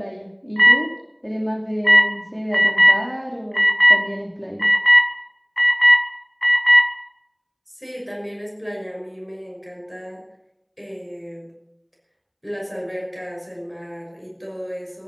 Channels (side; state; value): both; identical; correlation 1.00